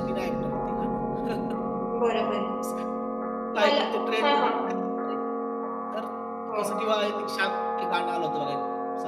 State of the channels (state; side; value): identical; both; correlation 1.00